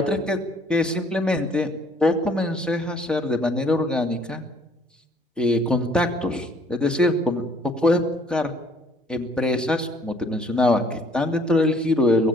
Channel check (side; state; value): both; normal; correlation 0.60